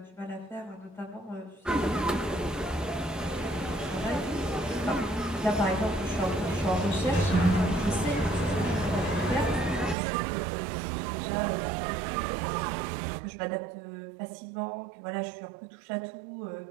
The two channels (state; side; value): drops out; left; at 10.0 s